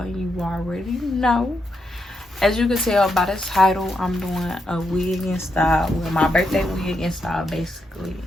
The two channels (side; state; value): both; normal; correlation 0.82